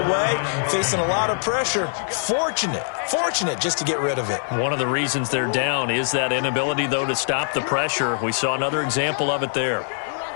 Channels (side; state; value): right; silent; 64 dB below the other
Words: facing a lot of pressure. Fortunate just to get rid of it. One of the reasons they're down is that inability, though, to stop the pressure. We saw another example of it there.